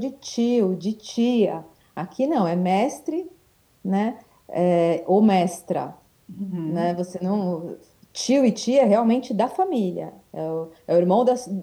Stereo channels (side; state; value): both; identical; correlation 1.00